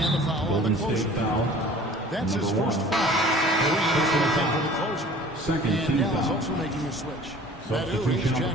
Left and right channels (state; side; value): normal; both; correlation 0.47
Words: the foul on the Golden closer. State foul. That's his Number first 1. foul. For the closer. Second and team Dallas foul. also making a switch. Substitution He's on the